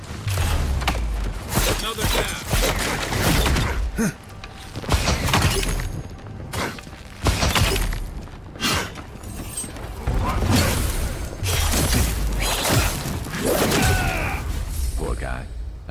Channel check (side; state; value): both; identical; correlation 1.00